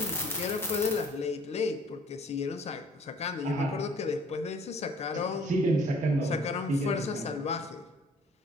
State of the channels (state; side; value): normal; both; correlation 0.55